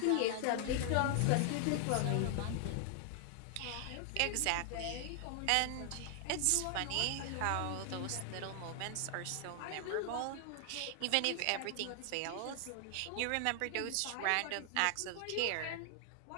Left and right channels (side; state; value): both; different; correlation 0.00